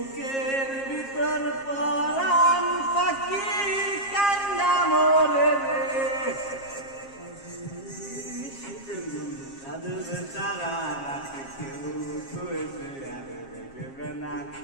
ভিতর পরাণ পাখি কান্না মরে রে সাধুর তারা রাখে কেউ শুয়েছে আর দেখবে না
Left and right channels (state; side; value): late; right; 7.4 ms